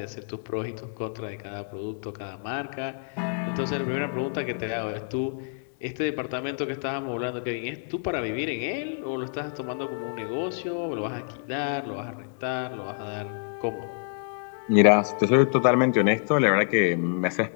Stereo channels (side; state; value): right; silent; 56 dB below the other